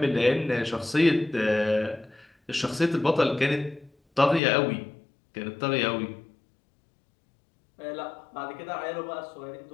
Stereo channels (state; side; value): drops out; right; at 4.4 s